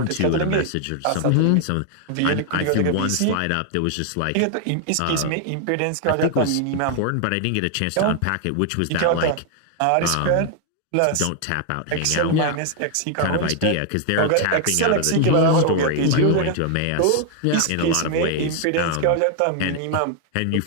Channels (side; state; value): both; different; correlation 0.00